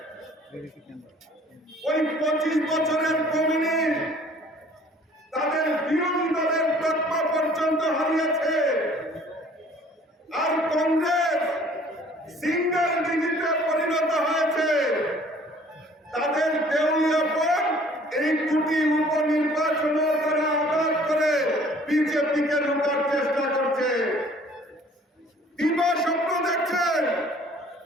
ওই 25 বছরের কমিউনিস্ট তাদের বিরোধী দলের তকমা পর্যন্ত হারিয়েছে, আর কংগ্রেস সিঙ্গেল ডিজিটে পরিণত হয়েছে। তাদের দেউলিয়াপন এই দুটি উপনির্বাচনও তারা আঘাত করে বিজেপিকে রোকার চেষ্টা করছে। দিবা স্বপ্ন দেখছেন,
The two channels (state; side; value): normal; both; correlation 0.54